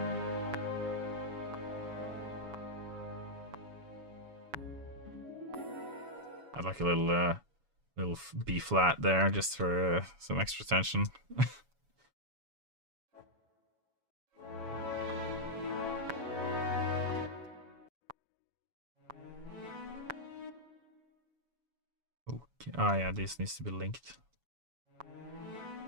I'd like a little B flat there just for some extra tension. Okay. Oh yeah, this needs to be linked.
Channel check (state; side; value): late; left; 7.1 ms